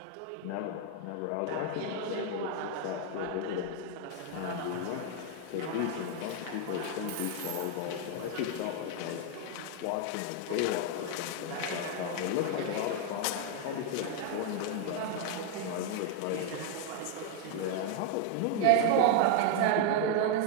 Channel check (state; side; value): different; both; correlation 0.00